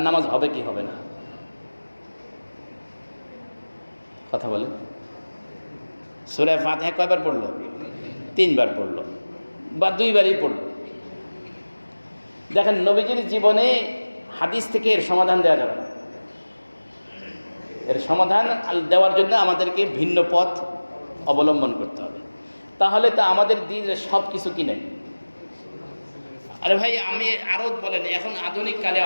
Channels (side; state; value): both; inverted; correlation -1.00